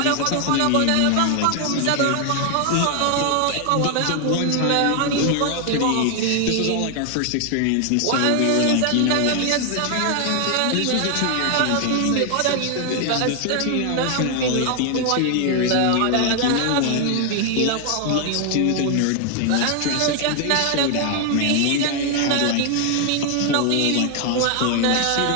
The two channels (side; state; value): both; different; correlation 0.00